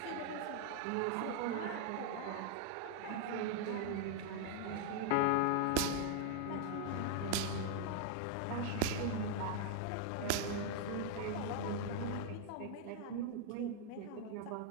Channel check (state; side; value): different; both; correlation 0.00